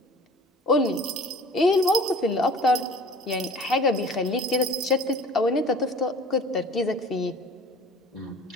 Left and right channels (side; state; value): both; normal; correlation 0.45